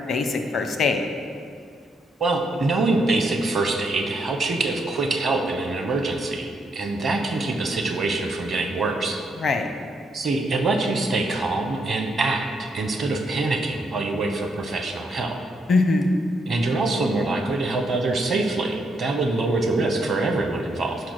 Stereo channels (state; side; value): normal; both; correlation 0.76